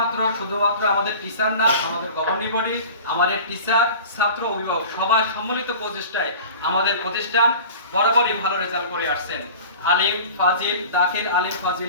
আমাদের টিচার না, আমাদের গভর্নিং বডি, আমাদের টিচার, ছাত্র, অভিভাবক সবাই সম্মিলিত প্রচেষ্টায় আমাদের প্রতিষ্ঠান বরাবরই ভালো রেজাল্ট করে আসছেন আলিম ফাজিল, দাখিল আলিম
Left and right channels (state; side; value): inverted; both; correlation -0.40